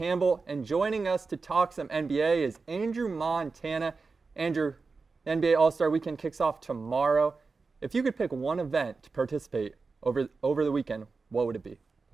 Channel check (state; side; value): quieter; left; 4.3 dB